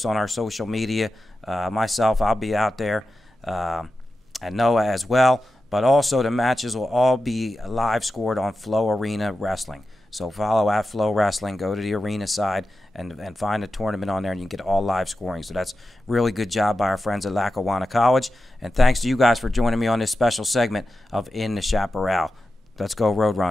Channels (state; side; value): normal; both; correlation 0.92